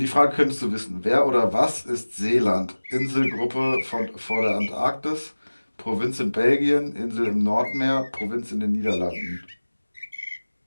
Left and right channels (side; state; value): both; inverted; correlation -1.00